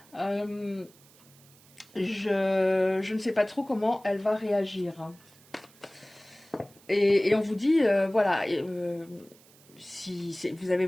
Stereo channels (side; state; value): right; noise; hiss, 26 dB below the sound